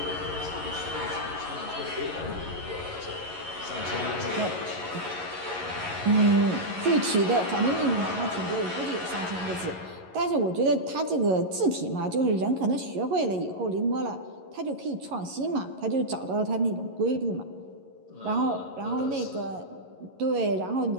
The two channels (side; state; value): left; late; 11 ms